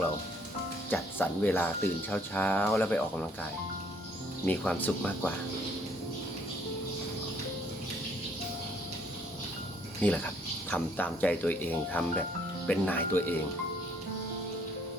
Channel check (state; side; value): normal; both; correlation 0.64